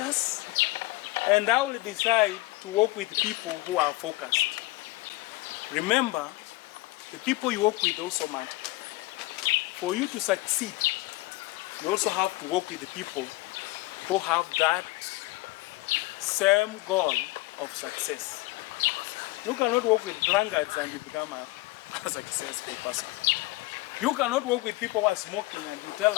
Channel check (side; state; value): right; quieter; 20.5 dB